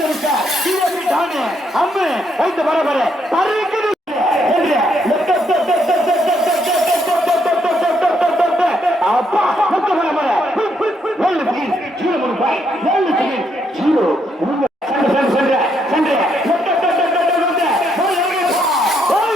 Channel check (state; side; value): normal; both; correlation 0.75